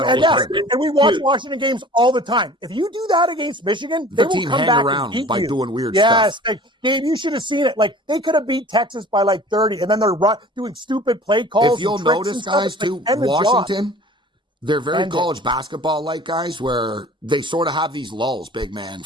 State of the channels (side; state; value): both; normal; correlation 0.45